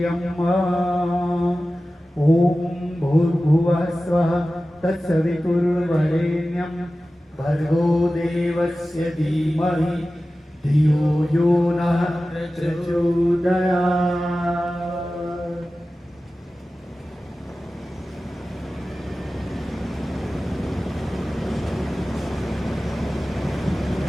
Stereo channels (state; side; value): normal; both; correlation 0.95